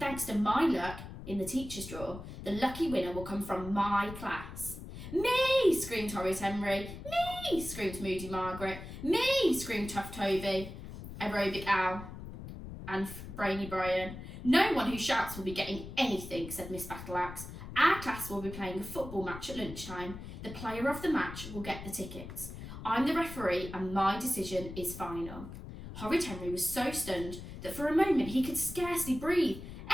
to my luck in the teacher's draw, the lucky winner will come from my class." "Me!" screamed Horrid Henry. "Me!" screamed Moody Margaret. "Me!" screamed Tough Toby, Aerobic Al, and Brainy Brian. "No one who shouts will be getting anything," said Miss Battleaxe. "Our class will be playing a football match at lunchtime. The player of the match will get the tickets. I'm the referee and my decision is final." Horrid Henry was so stunned that for a moment he could scarcely breathe.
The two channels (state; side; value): noise; left; rumble, 11 dB below the sound